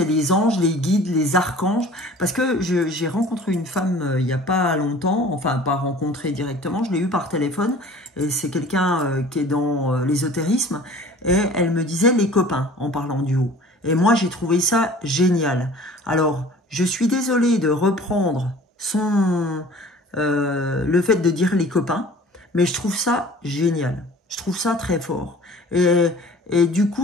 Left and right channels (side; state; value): both; normal; correlation 0.47